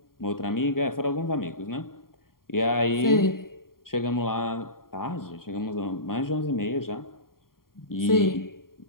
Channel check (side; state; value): right; late; 0.92 ms